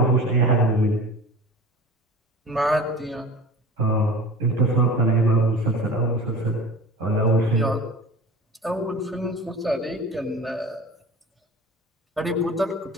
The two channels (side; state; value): both; normal; correlation 0.37